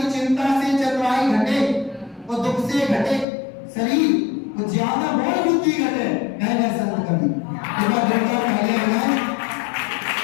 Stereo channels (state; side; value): drops out; right; at 3.2 s